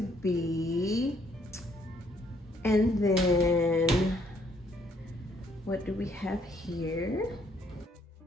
be. And then what do we have here?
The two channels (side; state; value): both; normal; correlation 0.67